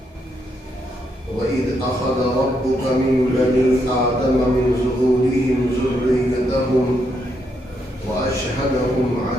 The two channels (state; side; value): normal; both; correlation 0.78